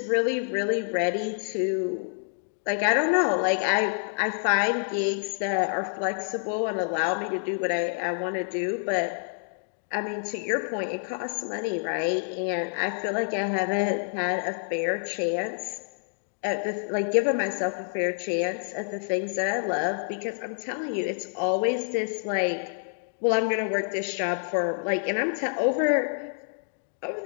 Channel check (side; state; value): right; silent; digital silence